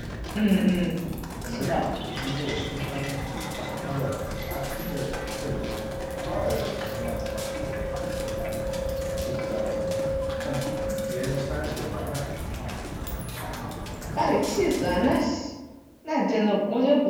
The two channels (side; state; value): both; identical; correlation 1.00